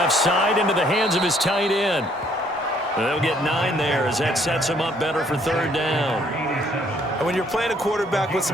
side into the hands of his tight end. They'll get 9 there as that sets him up better for 3rd down. And when you're playing a quarterback with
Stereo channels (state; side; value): normal; both; correlation 0.65